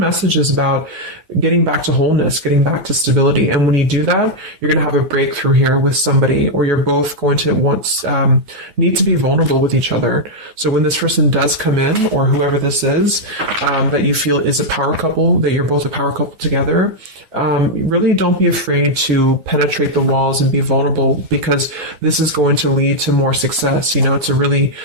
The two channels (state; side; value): late; left; 9.5 ms